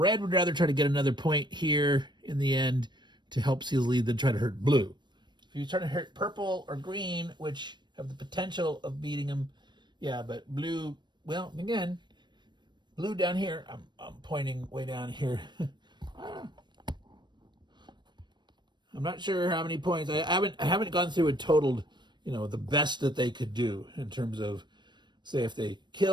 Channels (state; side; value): late; left; 0.22 ms